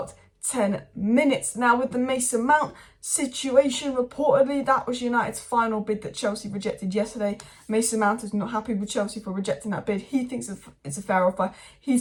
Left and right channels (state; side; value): identical; both; correlation 1.00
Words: 10 minutes. Now, with the Mason Mount situation, reportedly that was United's final bid that Chelsea rejected yesterday. Mason Mount is not happy with Chelsea for rejecting that bid. He thinks it's a fair offer.